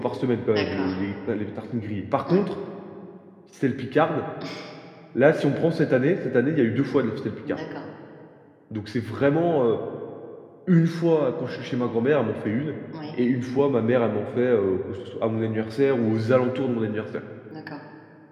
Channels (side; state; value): both; identical; correlation 1.00